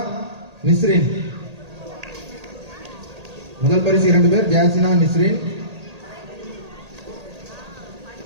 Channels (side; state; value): left; late; 1.8 ms